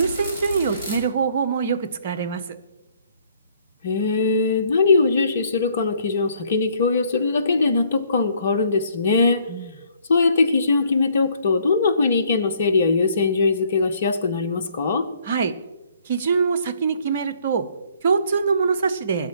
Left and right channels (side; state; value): both; inverted; correlation -0.63